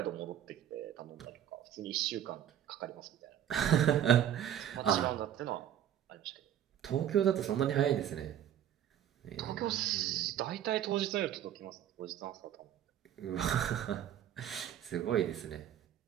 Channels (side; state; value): left; quieter; 10.5 dB